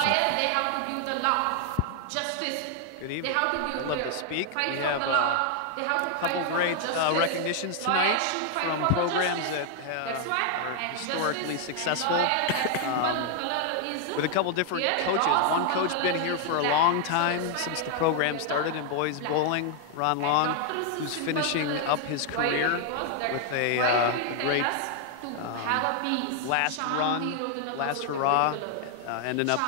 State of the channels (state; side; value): different; both; correlation 0.00